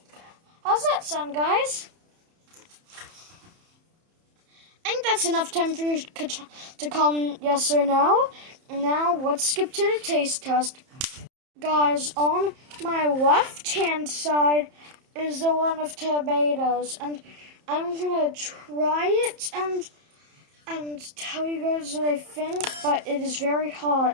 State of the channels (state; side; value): late; left; 30 ms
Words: How's that sound, guys? I think that's enough time for you to comment yes or no. Now let's skip to the taste test. Guys, on my left-hand side is the one of tomatoes, and I'm gonna try it and tell you guys what I think, but it is very